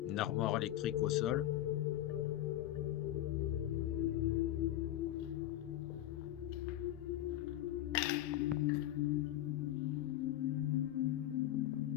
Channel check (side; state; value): right; quieter; 13.5 dB